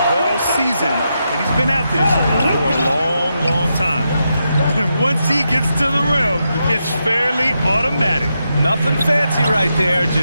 well seasoned. And he's been at this for a long, long time. And once he gets to the rim, it's fairly automatic. Nothing fancy right there.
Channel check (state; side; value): inverted; both; correlation -0.85